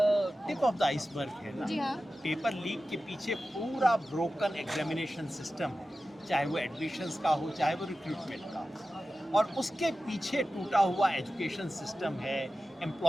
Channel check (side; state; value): both; normal; correlation 0.94